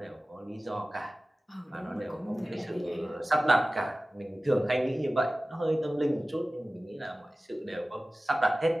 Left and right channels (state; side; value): normal; both; correlation 0.97